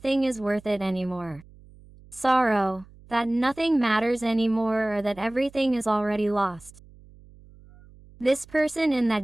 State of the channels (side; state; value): right; noise; hum, 24 dB below the sound